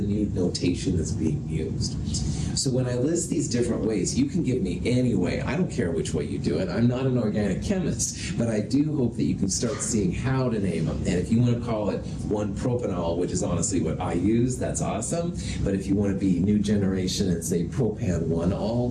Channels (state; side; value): identical; both; correlation 1.00